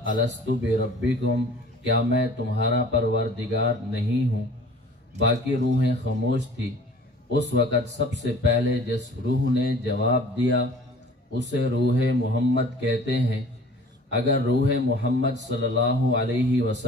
الست بربکم، کیا میں تمہارا پروردگار نہیں ہوں؟ باقی روحیں خاموش تھی۔ اس وقت سب سے پہلے جس روح نے جواب دیا اسے روح محمد کہتے ہیں۔ اگر روح محمد صلی اللہ علیہ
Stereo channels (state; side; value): normal; both; correlation 0.47